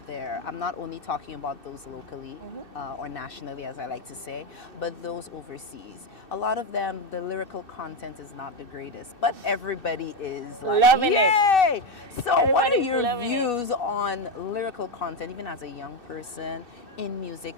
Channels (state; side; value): late; right; 2.6 ms